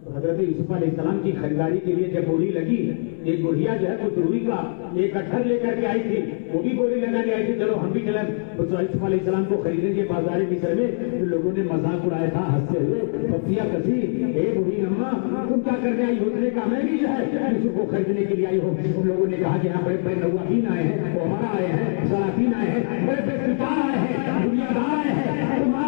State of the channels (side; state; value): right; silent; digital silence